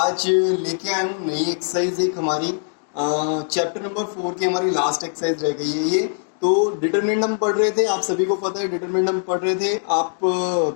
लेके आया हूँ नई एक्सरसाइज एक हमारी चैप्टर नंबर 4 की हमारी लास्ट एक्सरसाइज रह गई है ये। तो डिटरमिनेंट हम पढ़ रहे थे, आप सभी को पता है डिटरमिनेंट हम पढ़ रहे थे। आप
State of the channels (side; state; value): right; silent; digital silence